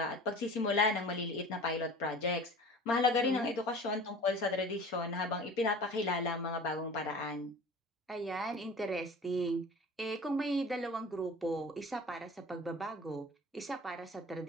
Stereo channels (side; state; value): both; normal; correlation 0.41